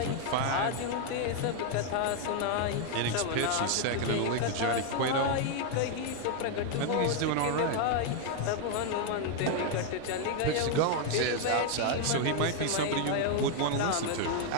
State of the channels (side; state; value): both; different; correlation 0.00